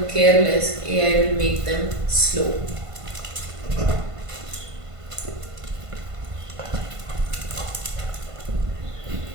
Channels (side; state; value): left; late; 1.5 ms